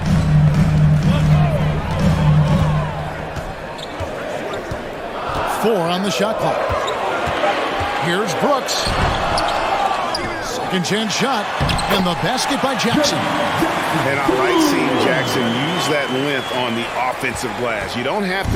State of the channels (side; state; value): both; identical; correlation 1.00